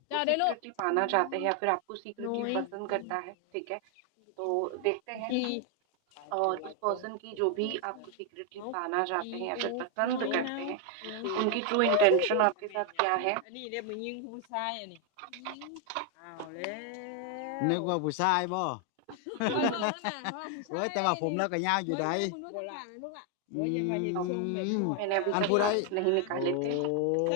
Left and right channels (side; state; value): both; different; correlation 0.00